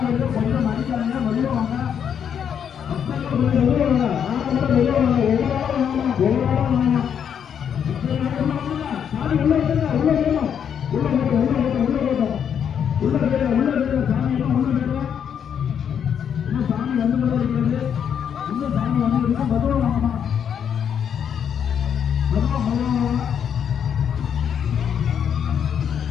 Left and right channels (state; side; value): quieter; right; 8.2 dB